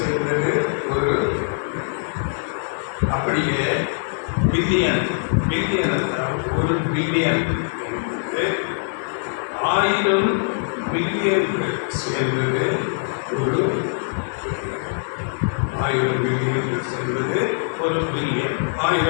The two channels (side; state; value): right; silent; 63 dB below the other